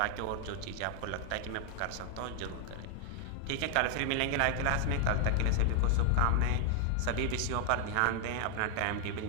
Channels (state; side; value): different; both; correlation 0.00